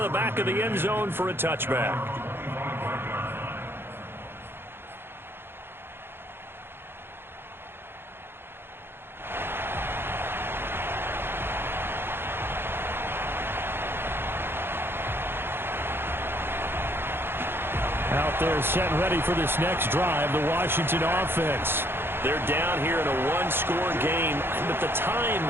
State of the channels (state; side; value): late; left; 0.11 ms